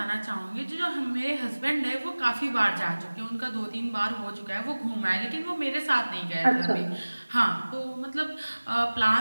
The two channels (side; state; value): both; inverted; correlation -1.00